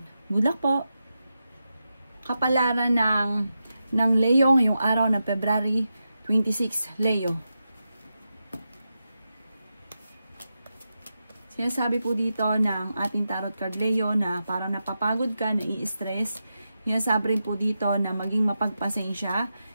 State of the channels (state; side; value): inverted; both; correlation -0.89